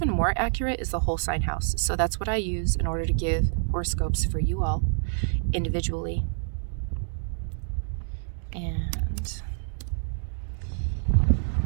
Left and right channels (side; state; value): left; silent; digital silence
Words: more accurate is the whole sign house. So that's what I use in order to give horoscopes for you all individually. And